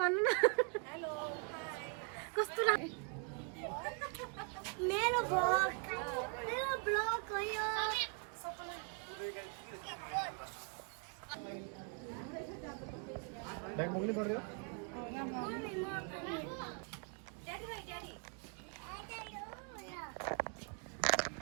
भन्नु न। कस्तो लाग्यो मेरो ब्लग हो यो। बैग मोगली पड़ रही हो?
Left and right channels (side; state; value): left; quieter; 38.3 dB